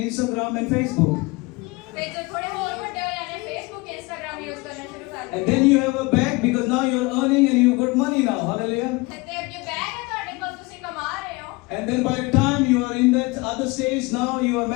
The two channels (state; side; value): quieter; right; 24.7 dB